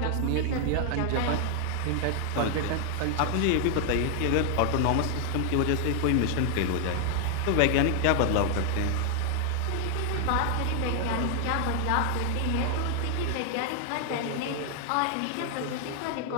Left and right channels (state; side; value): different; both; correlation 0.00